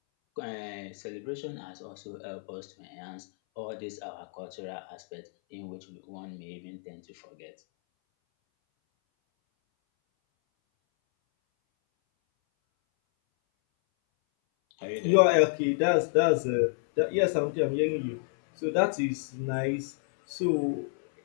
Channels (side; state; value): right; silent; 58 dB below the other